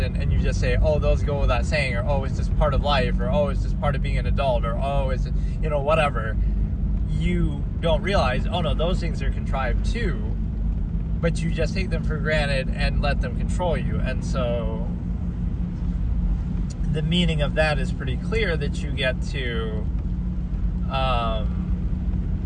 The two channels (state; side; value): identical; both; correlation 1.00